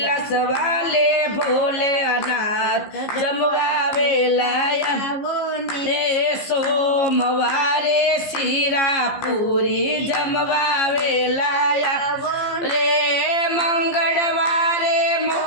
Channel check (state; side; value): late; right; 15 ms